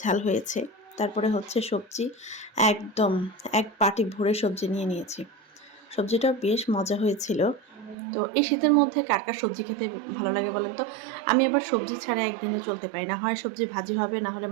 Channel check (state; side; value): drops out; left; at 8.0 s